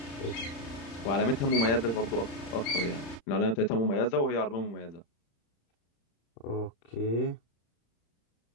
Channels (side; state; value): right; late; 35 ms